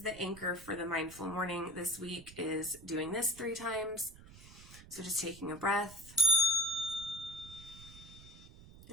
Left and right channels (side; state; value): right; noise; rumble, 18 dB below the sound